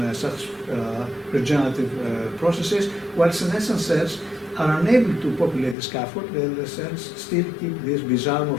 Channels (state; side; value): drops out; right; at 5.8 s